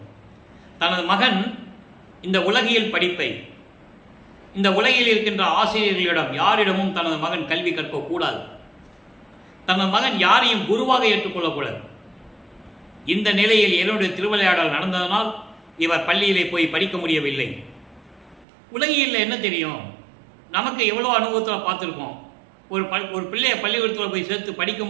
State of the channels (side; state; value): left; drops out; at 18.4 s